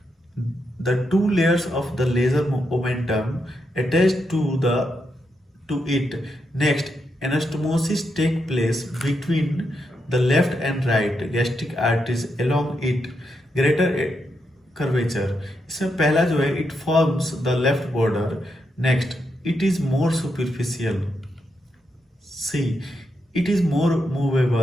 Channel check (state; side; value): normal; both; correlation 0.82